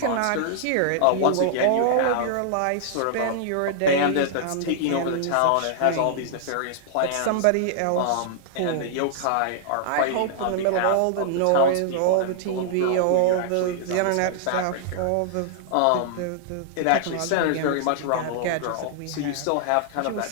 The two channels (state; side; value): different; both; correlation -0.01